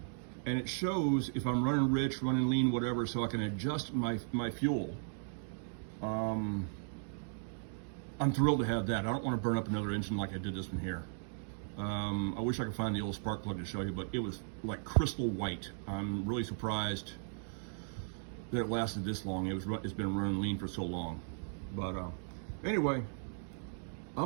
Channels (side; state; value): left; silent; digital silence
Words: and it shows if I'm running rich, running lean, whatever, so I can adjust my fuel. I'm thrilled to have that. I don't want to burn up another engine like I did this one here. I wish I could find the old spark plug to show you, but it was like crystal white. I'm really surprised that it lasted this long. It's been running lean for so long. But anyway,